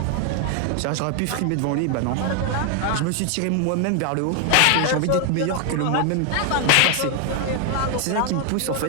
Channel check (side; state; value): both; different; correlation 0.00